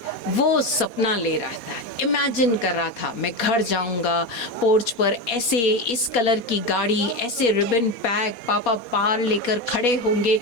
वो सपना ले रहा था, इमेजिन कर रहा था, मैं घर जाऊंगा, पोर्च पर ऐसे इस कलर की गाड़ी, ऐसे रिबन पैक, पापा पार लेकर खड़े होंगे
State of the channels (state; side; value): late; right; 4.2 ms